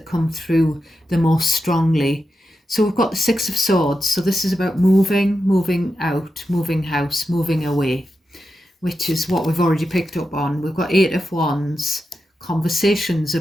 come through the most strongly. So we've got the Six of Swords. So this is about moving out, moving house, moving away, which is what we've already picked up on. We've got Eight of Wands, conversations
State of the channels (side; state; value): both; normal; correlation 0.89